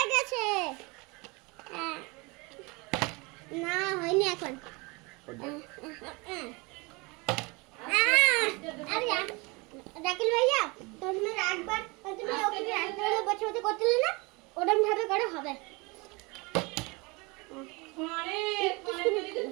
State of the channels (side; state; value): left; quieter; 26.9 dB